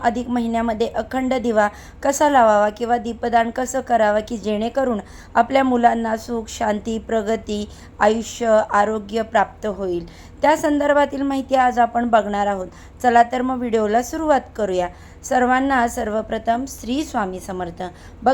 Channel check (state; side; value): identical; both; correlation 1.00